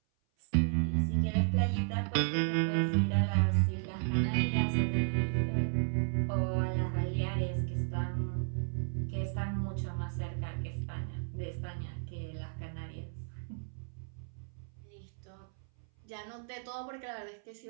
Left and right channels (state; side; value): silent; left; 55 dB below the other